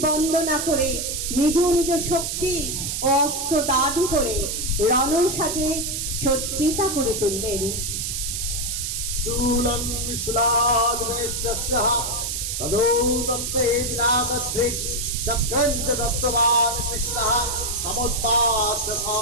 বন্দনা করে নিজ নিজ শক্তি ও অস্ত্র দান করে রণসাজে সজ্জিতা করে তুললেন। शूलं विशुलाद्वेष्टस्य तदो तस्यैनागध्रिक् चक्रं च दत्तवान् कृष्णः समुत्पाद्य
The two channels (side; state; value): right; noise; hiss, 2 dB below the sound